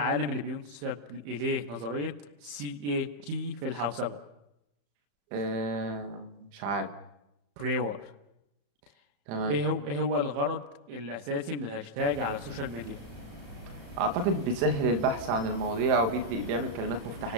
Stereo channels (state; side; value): late; left; 35 ms